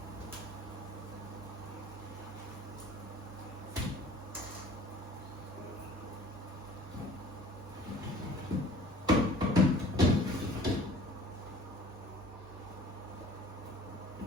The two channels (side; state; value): both; normal; correlation 0.47